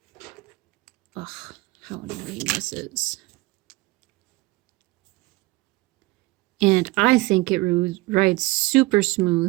Ugh, how annoying this is. And I think it rides super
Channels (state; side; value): quieter; left; 22.1 dB